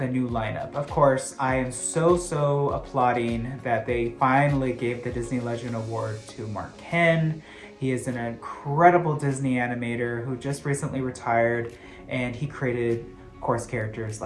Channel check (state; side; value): identical; both; correlation 1.00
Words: new lineup. Of course, I am so applauding that they finally gave the Disney Legend Award to Mark Henn. He is an incredible Disney animator who just recently retired, and he created, of course, characters